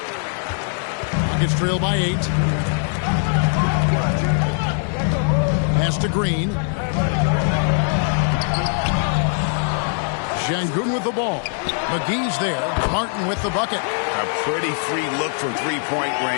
Rockets trail by 8. Pass to Green. Şengün with the ball. McGee's there. Martin with the bucket. A pretty free look from three-point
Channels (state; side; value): silent; right; 59 dB below the other